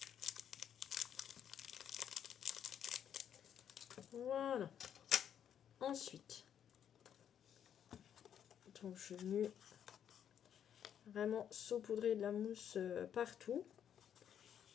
Voilà. Ensuite, donc je suis venue vraiment saupoudrer de la mousse partout.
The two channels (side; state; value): right; quieter; 9.1 dB